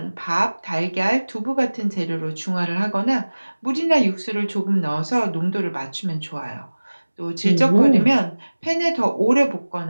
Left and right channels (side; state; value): both; inverted; correlation -1.00